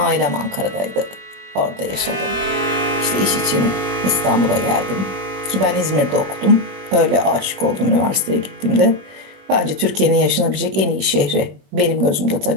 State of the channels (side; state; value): left; late; 21 ms